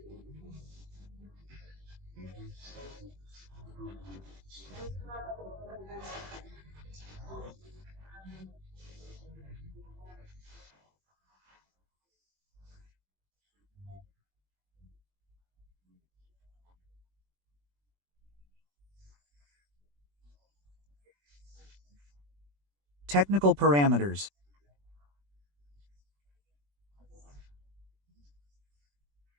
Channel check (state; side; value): late; left; 21 ms